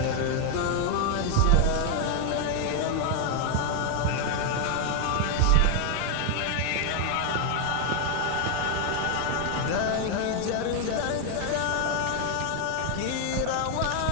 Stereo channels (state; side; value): different; both; correlation 0.00